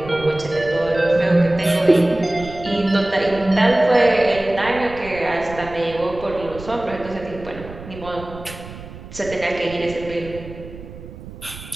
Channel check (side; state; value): right; noise; rumble, 15 dB below the sound